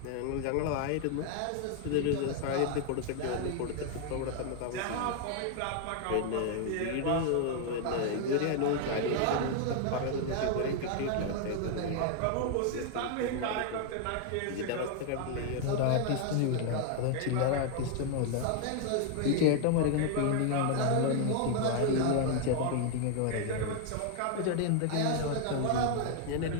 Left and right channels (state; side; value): different; both; correlation 0.00